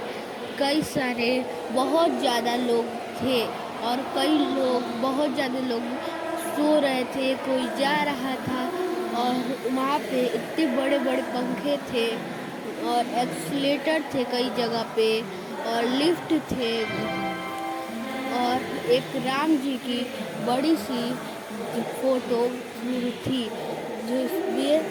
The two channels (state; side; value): identical; both; correlation 1.00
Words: कई सारे बहुत ज़्यादा लोग थे और बहुत ज़्यादा लोग सो रहे थे, कोई जा रहा था। और वहाँ पे इतने बड़े बड़े पंखे थे और एक्सीलेटर थे कई जगह पे और लिफ्ट थे। और एक राम जी की बड़ी सी फोटो थी